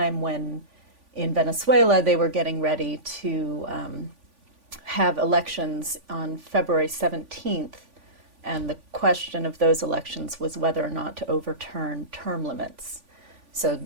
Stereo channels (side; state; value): left; late; 3.5 ms